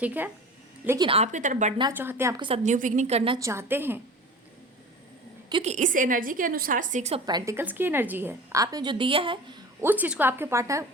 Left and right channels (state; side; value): normal; both; correlation 0.37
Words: है, लेकिन आपकी तरफ बढ़ना चाहते हैं, आपके साथ न्यू बिगिनिंग करना चाहते हैं, क्योंकि इस एनर्जी के अनुसार 6 ऑफ पेंटिकल्स की एनर्जी है। आपने जो दिया है उस चीज़ को आपके पार्टनर